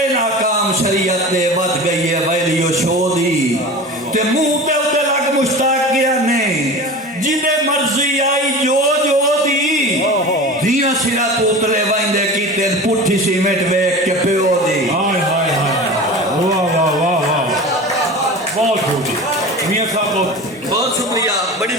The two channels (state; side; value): normal; both; correlation 0.33